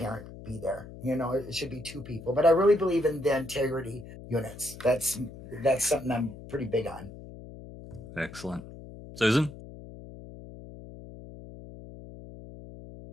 be there. It should be two people. But I really believe in the integrity units. That's something I'm pretty big on. Excellent. Susan?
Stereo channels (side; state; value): left; noise; hum, 15 dB below the sound